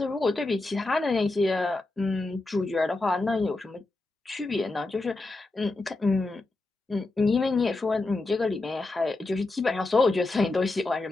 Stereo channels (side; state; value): right; quieter; 3.1 dB